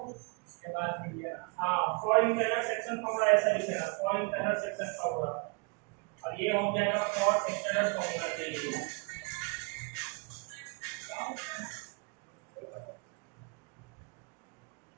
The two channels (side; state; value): left; quieter; 31.9 dB